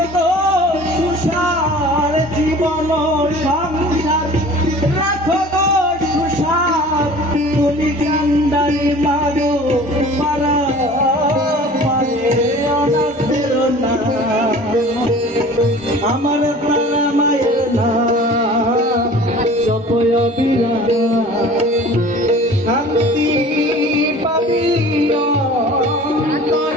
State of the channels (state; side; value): normal; both; correlation 0.44